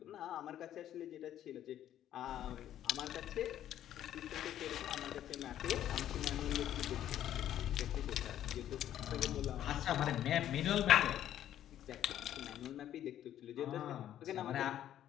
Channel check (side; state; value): right; quieter; 11.4 dB